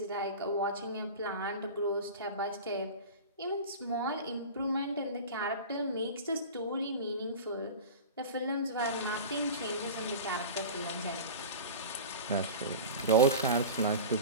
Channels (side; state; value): both; inverted; correlation -0.32